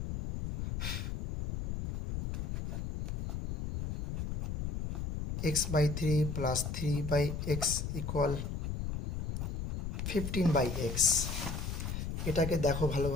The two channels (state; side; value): noise; left; rumble, 4 dB below the sound